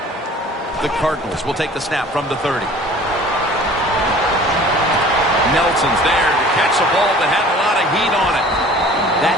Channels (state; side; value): normal; both; correlation 0.47